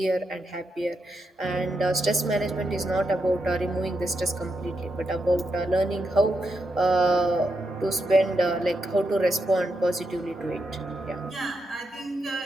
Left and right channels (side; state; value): both; normal; correlation 0.83